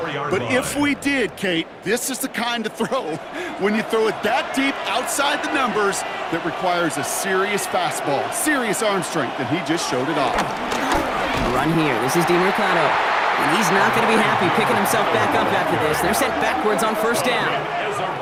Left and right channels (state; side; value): identical; both; correlation 1.00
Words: But if we did, Kate, this is the kind of throw, when you throw it that deep outside the numbers, that requires a serious fastball, serious arm strength, and he just showed it off. Run here. This is DiMercato. And he's not going to be happy picking himself back up after this. They're sent backwards on first down.